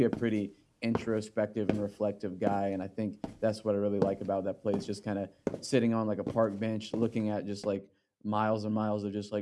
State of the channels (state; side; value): identical; both; correlation 1.00